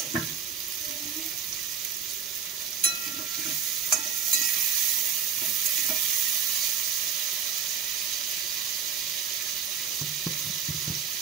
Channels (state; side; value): quieter; left; 7.3 dB